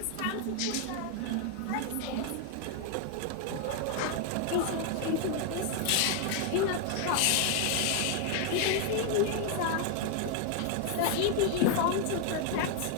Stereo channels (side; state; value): both; different; correlation 0.00